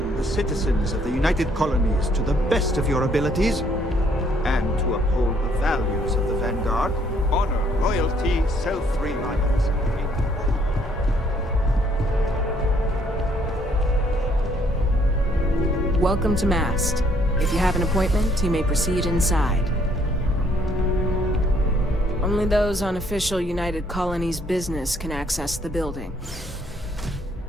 Citizens of the United Colonies to the best of your abilities, and to uphold the values of the Vanguard, honor, loyalty, self-reliance. Welcome to Mast. If you have an appointment, you may proceed inside. Only those on official United Colonies business can access the building.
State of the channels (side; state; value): both; normal; correlation 0.66